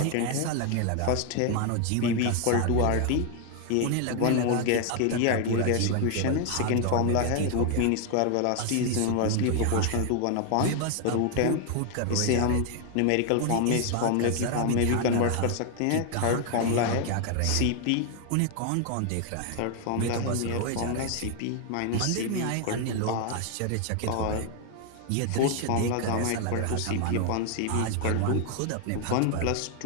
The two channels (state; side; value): different; both; correlation 0.00